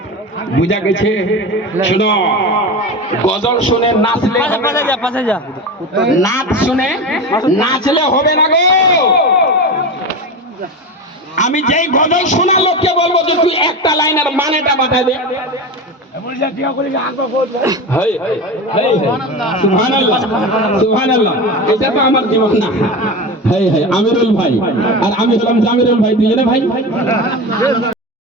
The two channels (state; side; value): normal; both; correlation 0.25